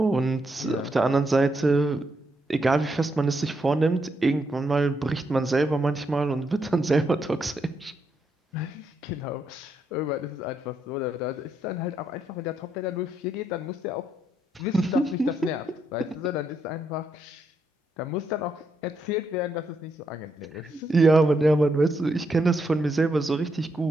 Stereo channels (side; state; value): both; normal; correlation 0.79